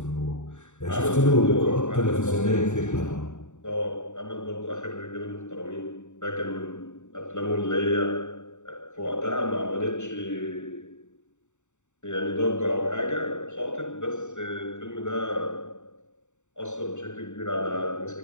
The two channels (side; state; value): right; late; 0.84 ms